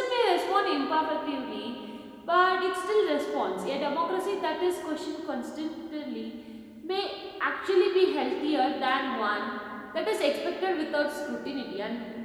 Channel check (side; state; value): both; identical; correlation 1.00